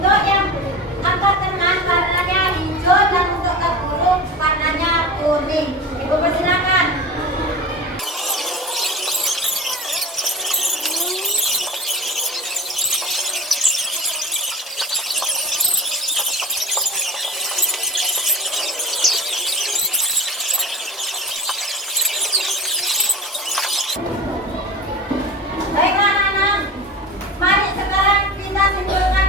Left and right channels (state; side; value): normal; both; correlation 0.32